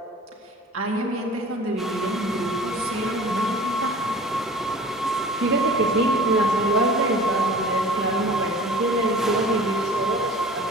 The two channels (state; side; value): normal; both; correlation 0.42